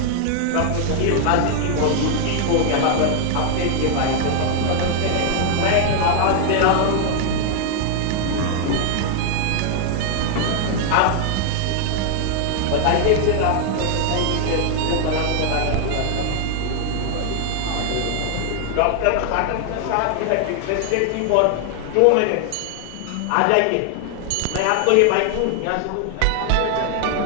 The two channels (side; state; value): both; different; correlation 0.00